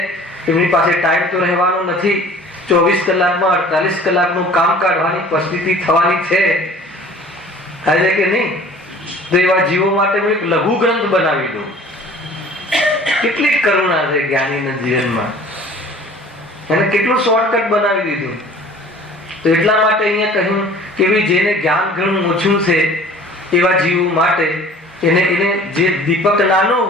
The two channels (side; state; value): both; normal; correlation 0.48